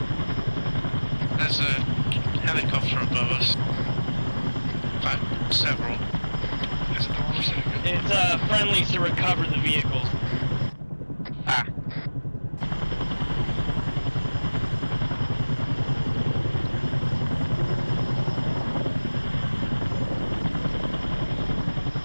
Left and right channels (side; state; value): both; inverted; correlation -1.00